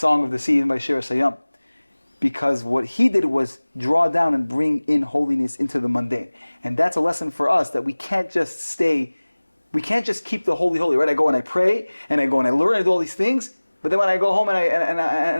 of the Sea, even by Shir Hasayam. Because what he did was draw down and bring in holiness into the mundane. And that's a lesson for us, that we can't just keep the holy, right? I go and I pray, and I go and I learn and do all these things, but then when I go home and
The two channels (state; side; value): inverted; both; correlation -1.00